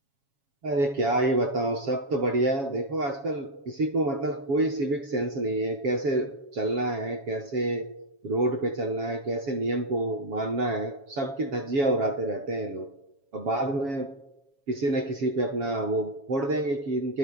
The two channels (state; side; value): late; left; 7.3 ms